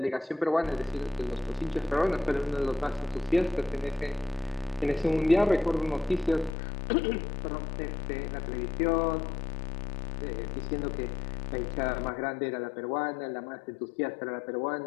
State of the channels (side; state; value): right; drops out; at 6.5 s